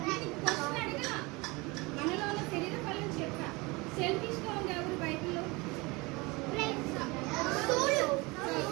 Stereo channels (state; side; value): quieter; left; 24.9 dB